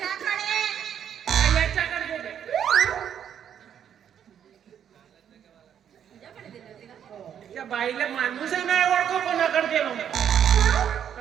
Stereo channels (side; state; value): left; quieter; 9.0 dB